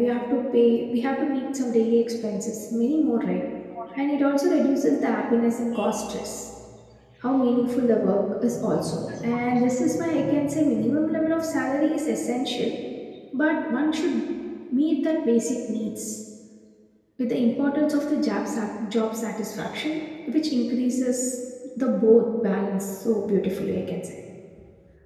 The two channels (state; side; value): identical; both; correlation 1.00